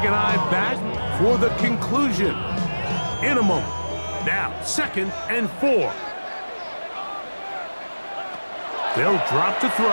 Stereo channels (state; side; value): inverted; both; correlation -1.00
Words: and I back for the conclusion in a moment. Now, 2nd and 4. They'll drop to throw.